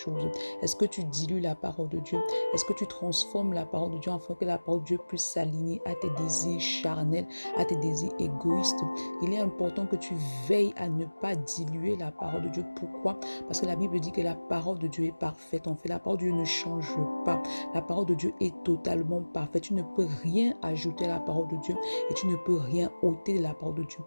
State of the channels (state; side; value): inverted; both; correlation -1.00